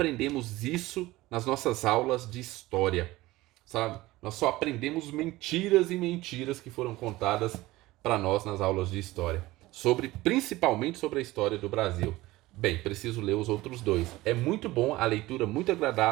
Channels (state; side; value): quieter; left; 18.5 dB